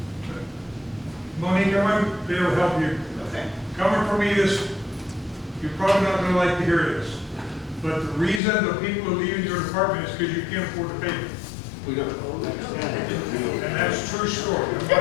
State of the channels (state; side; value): drops out; right; at 8.4 s